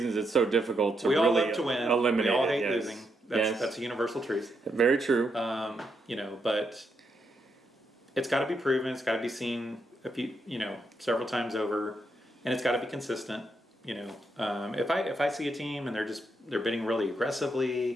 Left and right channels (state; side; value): normal; both; correlation 0.80